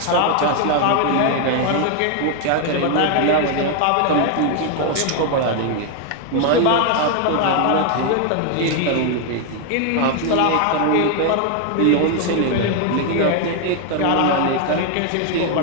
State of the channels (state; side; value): different; both; correlation 0.00